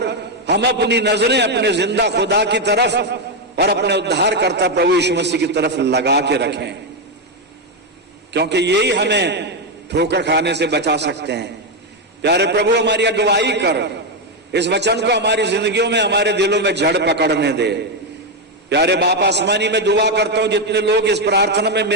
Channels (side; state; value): both; normal; correlation 0.05